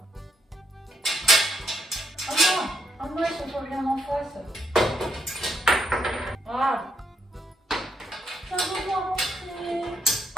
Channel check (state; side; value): normal; both; correlation 0.77